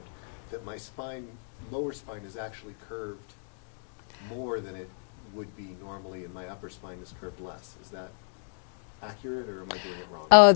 that my spine, lower spine, is actually curved more than it would be normally, and my upper spine is curved less. Is that accurate, or am I doing it wrong?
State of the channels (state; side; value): silent; right; digital silence